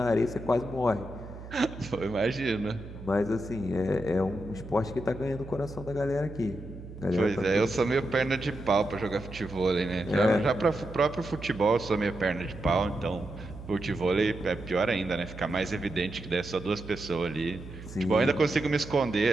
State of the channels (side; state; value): right; noise; hum, 13 dB below the sound